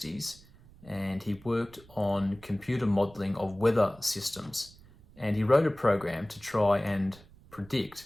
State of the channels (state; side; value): noise; right; rumble, 24 dB below the sound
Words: and he worked on computer modelling of weather systems. And he wrote a program to try and